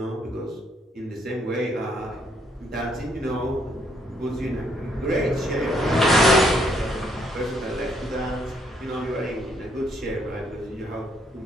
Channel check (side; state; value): both; normal; correlation 0.70